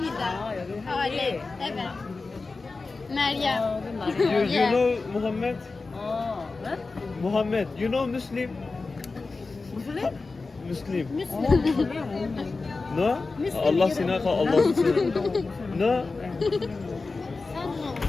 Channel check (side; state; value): right; quieter; 3.9 dB